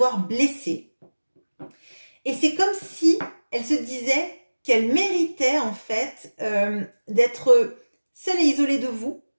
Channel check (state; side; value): inverted; both; correlation -1.00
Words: blessé. Et c'est comme si elle se disait qu'elle méritait en fait d'être seule et isolée de vous